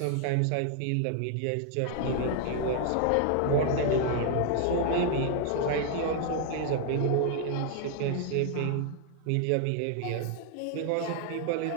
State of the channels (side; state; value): both; different; correlation 0.00